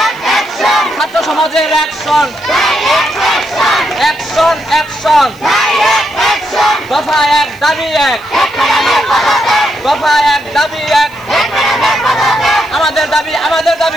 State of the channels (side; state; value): left; noise; hiss, 27 dB below the sound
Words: ছাত্র সমাজের অ্যাকশন, অ্যাকশন অ্যাকশন, দফা এক দাবি এক, দফা এক দাবি এক, আমাদের দাবি আমাদের